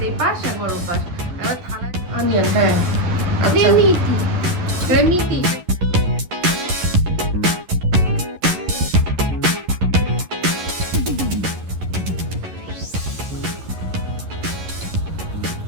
এপাশ একবার ওপাশ, এবার থালায় অনিয়ন। হ্যাঁ ক্রেমিটি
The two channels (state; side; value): late; left; 11 ms